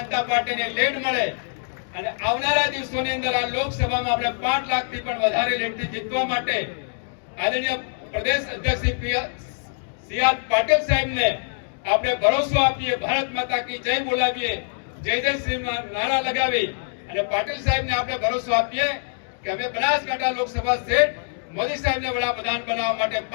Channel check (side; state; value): right; silent; digital silence